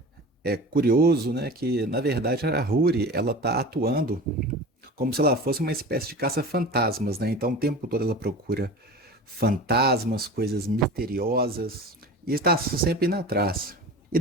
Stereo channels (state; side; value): normal; both; correlation 0.34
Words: curioso, né? Que na verdade a Huri ela tá atuando como se ela fosse uma espécie de caça-fantasmas, né? Então o tempo todo ela procura fantasmas, coisas misteriosas e está sempre indo atrás. E